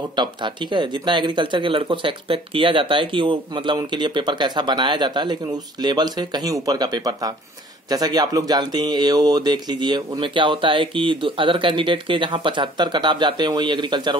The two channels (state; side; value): normal; both; correlation 0.53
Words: टफ था, ठीक है। जितना एग्रीकल्चर के लड़कों से एक्सपेक्ट किया जाता है कि वो मतलब उनके लिए पेपर कैसा बनाया जाता है, लेकिन उस लेवल से कहीं ऊपर का पेपर था। जैसा कि आप लोग जानते हैं, एओ देख लीजिए, उनमें क्या होता है कि अदर कैंडिडेट के जहां 75 कट ऑफ जाते हैं, वही एग्रीकल्चर